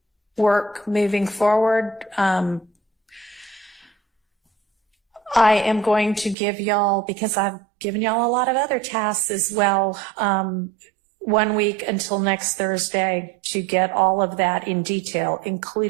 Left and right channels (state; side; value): drops out; left; at 6.4 s